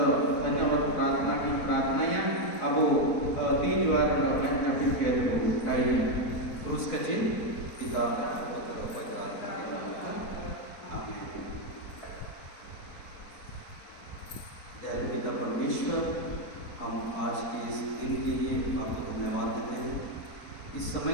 धन्यवाद प्रार्थना की प्रार्थना या अब तीन द्वारा लोगों ने जब किया तो कहीं क्रूस का चिन्ह पिता पुत्र पवित्र आत्मा के नाम में आमीन। दयालु पिता परमेश्वर, हम आज के इस दिन के लिए आपको धन्यवाद देते हैं। इस समय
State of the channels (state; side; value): late; right; 4.5 ms